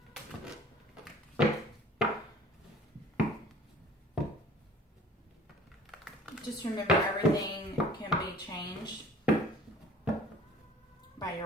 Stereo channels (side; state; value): both; normal; correlation 0.48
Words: Just remember, everything can be changed by